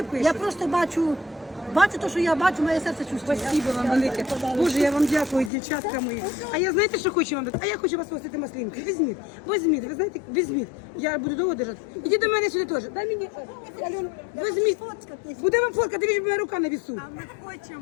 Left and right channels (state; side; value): drops out; right; at 5.5 s